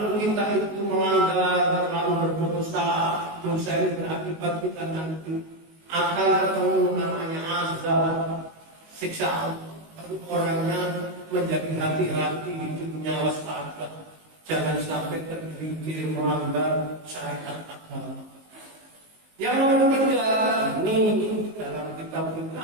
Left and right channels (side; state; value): left; late; 19 ms